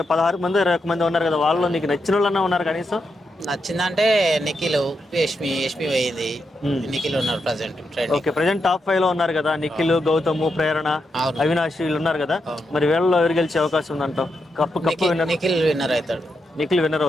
మంది 21 మంది ఉన్నారు కదా, వాళ్ళలో నీకు నచ్చిన వాళ్ళన్నా ఉన్నారు కనీసం? నచ్చిందంటే నిఖిల్, యష్మి పోయింది. నిఖిల్ ఉన్నారు present okay, trending. Present top 5 లో ఉన్నారు కదా, నిఖిల్, గౌతమ్, ప్రేరణ, అవును, అవినాష్ వీళ్ళు ఉన్నారు కదా. అవును. మరి వీళ్ళలో ఎవరు గెలిచే అవకాశం ఉందంటావు? కప్పు విన్నర్ నిఖిల్ విన్నర్ అవుతాడు. నిఖిల్ విన్నర్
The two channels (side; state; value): both; normal; correlation 0.84